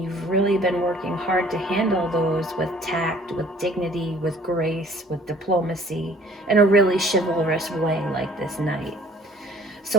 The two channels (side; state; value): both; normal; correlation 0.54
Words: you've really been working hard to handle those with tact, with dignity, with grace, with diplomacy, in a really chivalrous way like this knight.